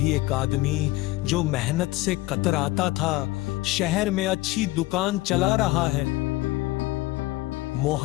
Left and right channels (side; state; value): right; quieter; 19.0 dB